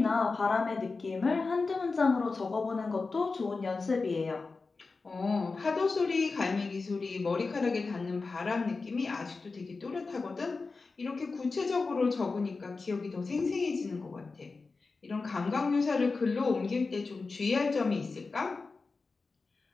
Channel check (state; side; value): quieter; right; 4.1 dB